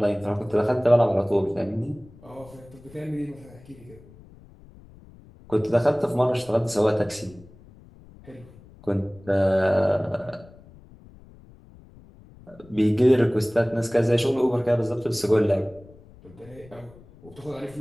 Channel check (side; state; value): left; noise; rumble, 23 dB below the sound